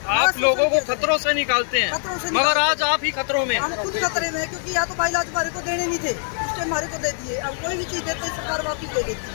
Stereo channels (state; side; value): silent; right; 61 dB below the other